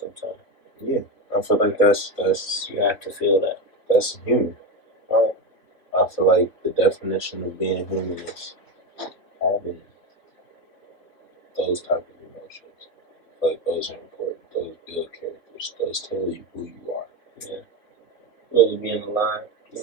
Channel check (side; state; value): right; late; 3.0 ms